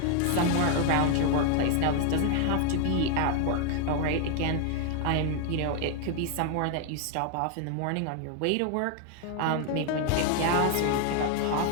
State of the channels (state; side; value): different; both; correlation 0.01